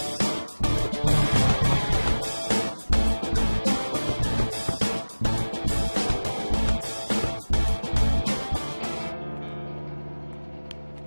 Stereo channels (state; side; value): inverted; both; correlation -1.00